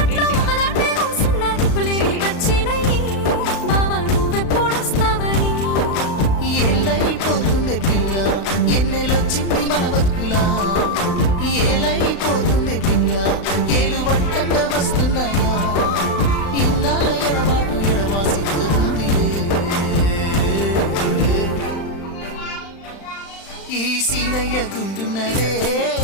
ఏలైపోతుందే పిల్ల ఎన్నెలొచ్చింది మన బతుకులా ఏలైపోతుందే పిల్ల ఏలు వట్టంగా వస్తున్నాయా ఇన్నాళ్ళ ఎడబాటు ఎడవాసిపోతుందిలే ఈ సీనయ్య గుండున్నదే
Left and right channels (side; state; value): right; late; 35 ms